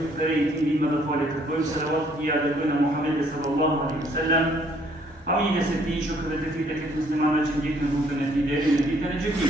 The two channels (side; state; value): both; normal; correlation 0.64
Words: فريتين بما بفعل تقويم صلوات يا دكتور محمد صلى الله عليه وسلم. أمين ستي شكر تفيدك المسلمان وجهك نبوك نتيجة نتيجة